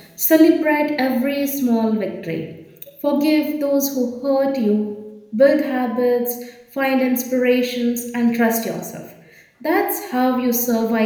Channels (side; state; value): both; identical; correlation 1.00